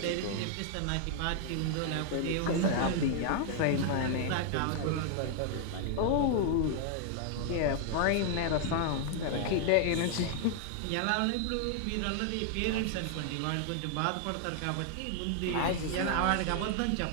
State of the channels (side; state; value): both; different; correlation 0.00